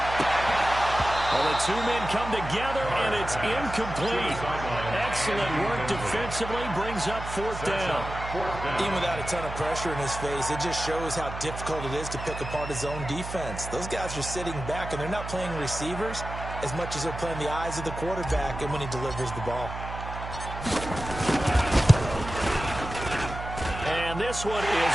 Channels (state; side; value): noise; right; hum, 8 dB below the sound